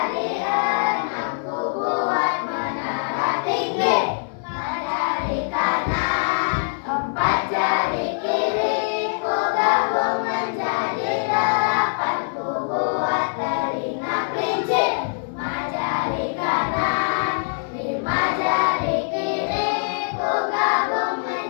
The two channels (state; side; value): silent; right; 62 dB below the other